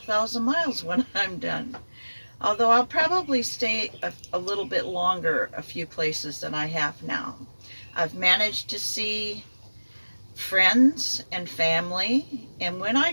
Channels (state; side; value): inverted; both; correlation -1.00